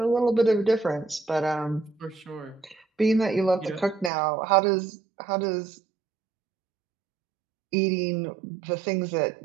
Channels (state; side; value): drops out; left; at 4.1 s